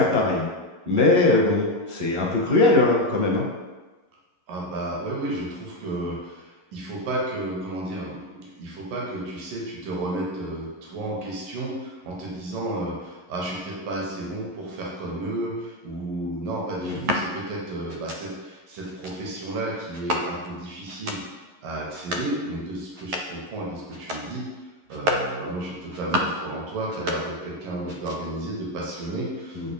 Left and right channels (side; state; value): left; late; 11 ms